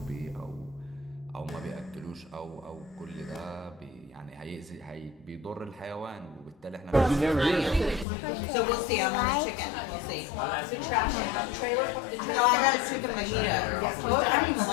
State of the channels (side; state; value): right; drops out; at 8.1 s